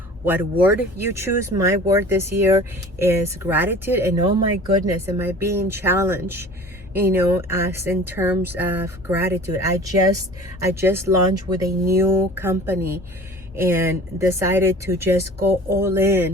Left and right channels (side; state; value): both; normal; correlation 0.43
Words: what word you choose. My word this year is gratitude. And oh my goodness, am I being challenged, as in terms of gratitude. I just launched with a new company and decided to just go all